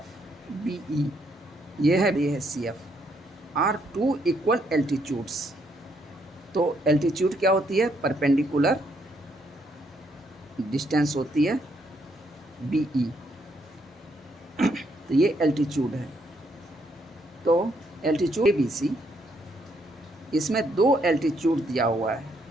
BE ये है CF are two equal altitudes. तो एल्टीट्यूड क्या होती है, परपेंडिकुलर डिस्टेंस होती है BE, तो ये एल्टीट्यूड है। तो एल्टीट्यूड ABC, इसमें दो एल्टीट्यूड दिया हुआ है।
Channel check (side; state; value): both; normal; correlation 0.73